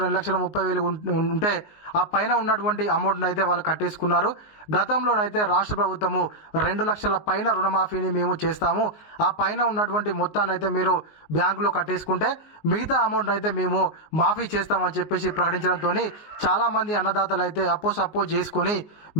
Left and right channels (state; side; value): late; right; 19 ms